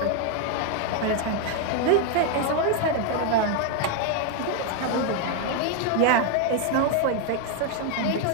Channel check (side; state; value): both; different; correlation 0.01